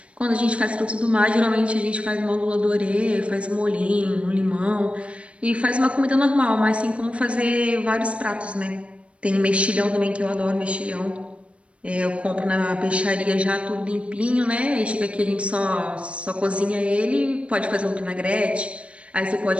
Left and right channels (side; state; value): left; late; 0.061 ms